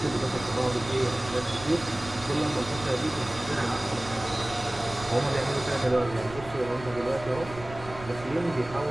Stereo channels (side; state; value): right; noise; rumble, 15 dB below the sound